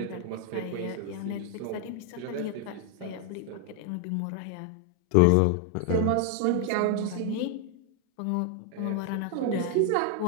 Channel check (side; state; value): both; different; correlation 0.00